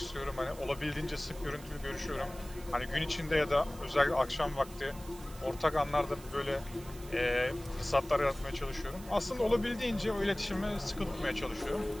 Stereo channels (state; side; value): noise; right; hiss, 19 dB below the sound